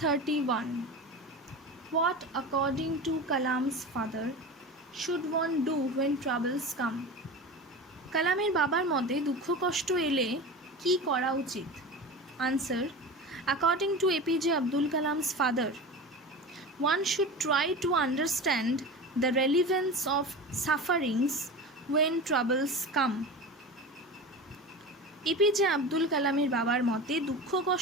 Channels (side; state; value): both; normal; correlation 0.30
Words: 31. What according to Kalam's father should one do when troubles come? কালামের বাবার মতে দুঃখ কষ্ট এলে কি করা উচিত? Answer, according to APJ Abdul Kalam's father, one should try to understand the relevance of sufferings when troubles come. APJ Abdul কালামের বাবার মতে দুঃখ